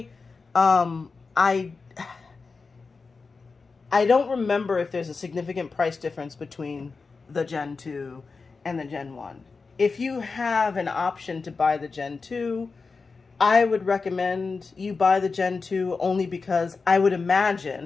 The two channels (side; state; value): right; quieter; 4.4 dB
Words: I don't remember if there's a significant price difference between the Gen 2 and the Gen 1. If you have an option to buy the Gen 2, I would recommend you buy the Gen 2 only because I would